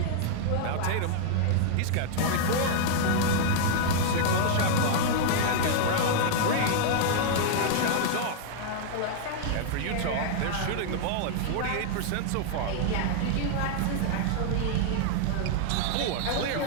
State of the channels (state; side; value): different; both; correlation -0.01